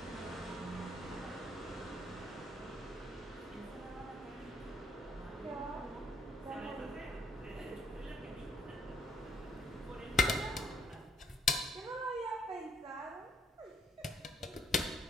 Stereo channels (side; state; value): both; normal; correlation 0.65